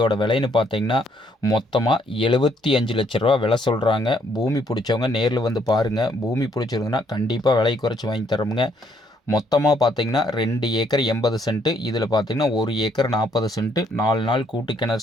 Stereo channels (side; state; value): both; normal; correlation 0.69